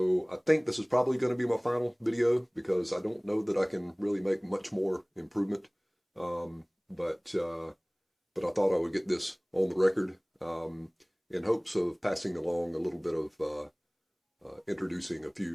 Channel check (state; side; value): identical; both; correlation 1.00